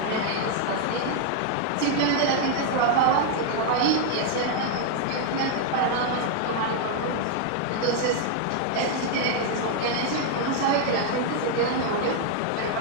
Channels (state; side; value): different; both; correlation 0.00